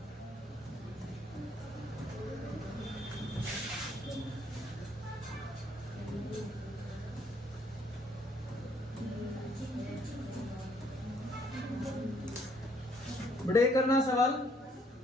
बेटे ये करना सवाल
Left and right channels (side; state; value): both; normal; correlation 0.67